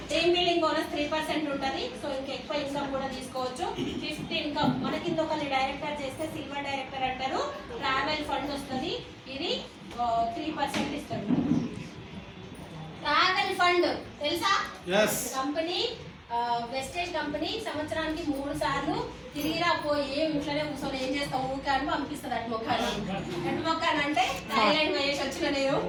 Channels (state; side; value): identical; both; correlation 1.00